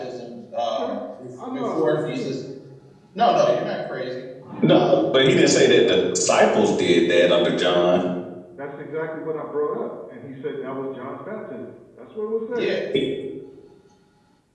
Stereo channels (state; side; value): identical; both; correlation 1.00